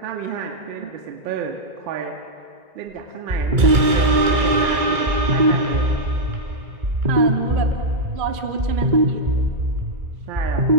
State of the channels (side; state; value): left; late; 2.2 ms